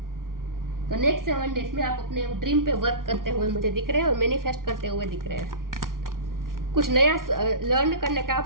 तो नेक्स्ट 7 डेज में आप अपने ड्रीम पे वर्क करते हुए मुझे दिख रहे हैं और मैनिफेस्ट करते हुए दिख रहे हैं। कुछ नया लर्न करने का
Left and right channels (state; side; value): late; left; 0.91 ms